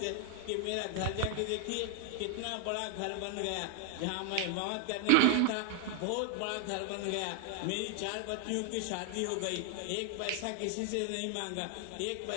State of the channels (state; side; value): different; both; correlation 0.00